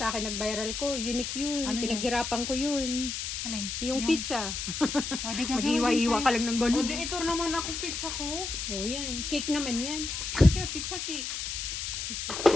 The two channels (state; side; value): noise; left; hiss, 4 dB below the sound